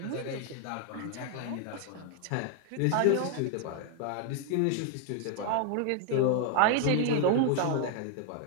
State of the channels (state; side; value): different; both; correlation 0.00